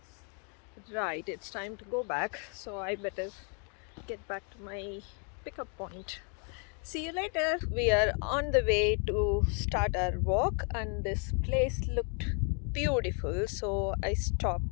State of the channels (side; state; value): right; quieter; 39.2 dB